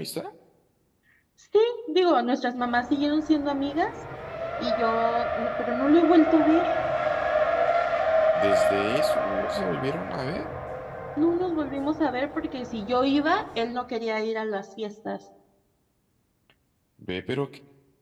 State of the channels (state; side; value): identical; both; correlation 1.00